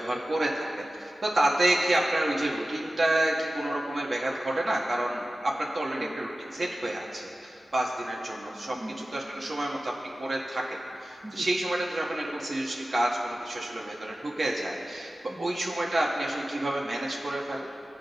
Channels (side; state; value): both; normal; correlation 0.95